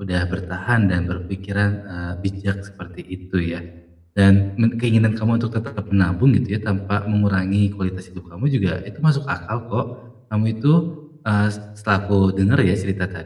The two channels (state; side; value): identical; both; correlation 1.00